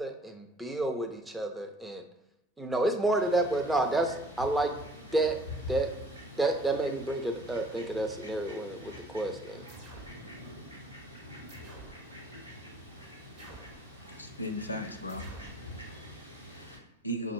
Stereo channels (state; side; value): normal; both; correlation 0.55